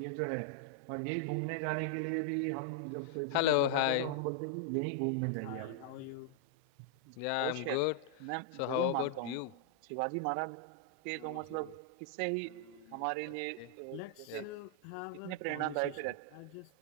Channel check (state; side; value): different; both; correlation -0.01